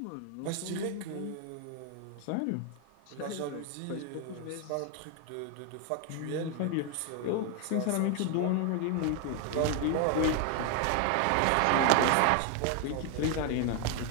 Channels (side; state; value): both; different; correlation 0.01